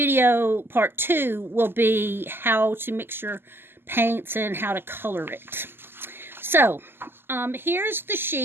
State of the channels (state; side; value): late; left; 0.11 ms